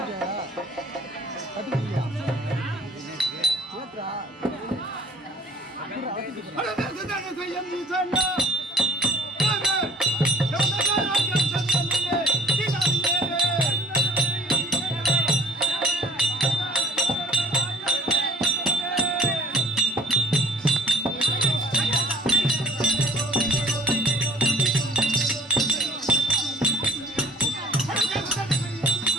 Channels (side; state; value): both; normal; correlation 0.51